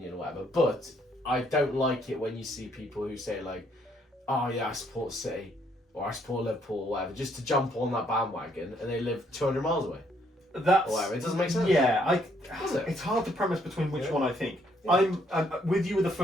or whatever. But I don't like it when you see people who say "Oh yeah, I support City" or "I support Liverpool" or whatever, just to jump on that bandwagon, and they live 200 miles away. That's or whatever. It doesn't make sense. Yeah, it's hard to premise between which one I think. Yeah. I'm with you with the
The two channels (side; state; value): both; normal; correlation 0.69